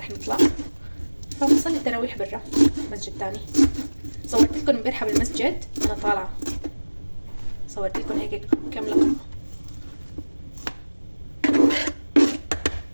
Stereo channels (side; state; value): both; inverted; correlation -1.00